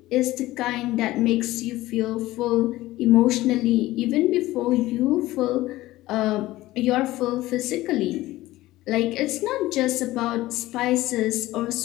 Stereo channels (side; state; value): right; quieter; 17.1 dB